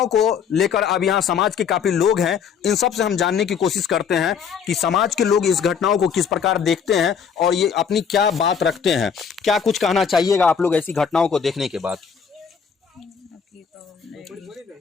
को लेकर अब यहाँ समाज के काफी लोग हैं। इन सब से हम जानने की कोशिश करते हैं कि समाज के लोग इस घटनाओं को किस प्रकार देखते हैं और ये अपनी क्या बात रखते हैं। क्या कुछ कहना चाहिएगा आप लोग ऐसी घटनाओं को देखने के बाद?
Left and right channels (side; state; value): right; quieter; 6.9 dB